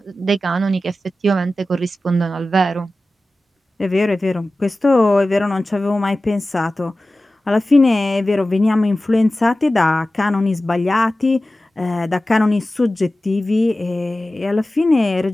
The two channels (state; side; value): normal; both; correlation 0.95